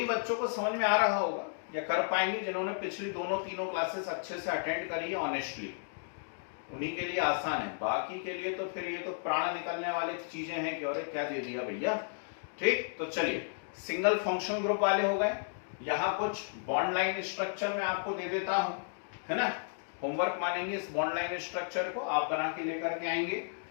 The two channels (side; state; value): right; silent; digital silence